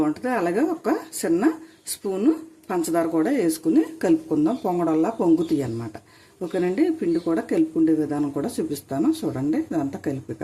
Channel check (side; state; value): both; identical; correlation 1.00